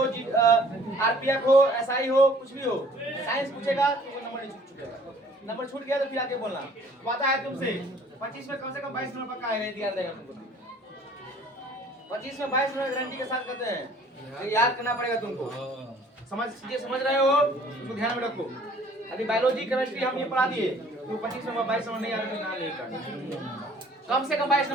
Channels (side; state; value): both; normal; correlation 0.55